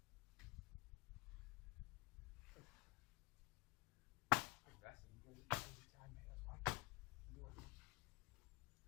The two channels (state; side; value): quieter; right; 23.7 dB